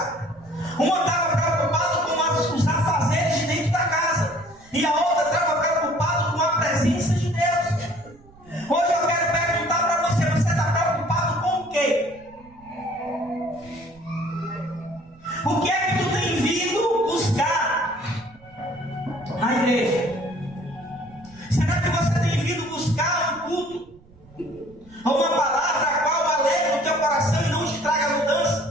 uma estava preocupada com os afazeres de dentro da casa, e a outra estava preocupada com a presença de Deus. Hoje eu quero perguntar para você, você está preocupado com o quê? O que é que tu tem vindo buscar na igreja? Será que você tem vindo buscar um culto? Ou uma palavra a qual alegra o teu coração e não te traga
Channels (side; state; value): right; noise; rumble, 25 dB below the sound